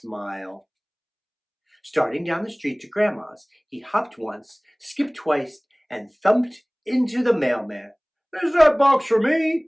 Starting down the street to Grandma's, he hopped once, skipped twice, and thumped into the mailman. Is that box for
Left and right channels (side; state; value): both; identical; correlation 1.00